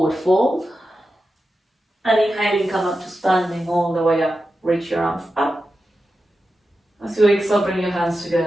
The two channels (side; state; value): both; normal; correlation 0.91